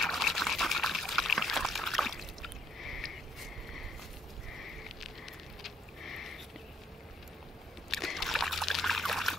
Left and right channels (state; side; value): normal; both; correlation 0.68